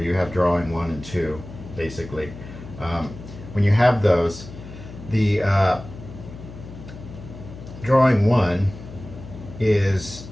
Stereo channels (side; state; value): left; noise; hum, 14 dB below the sound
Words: you have drawing 1 and 2, basically. When you have those, the drawing 1 is